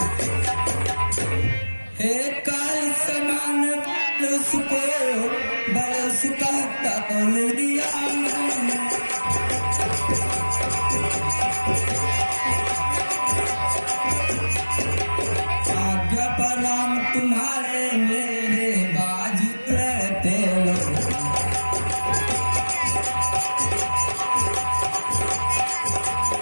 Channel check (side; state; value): both; inverted; correlation -1.00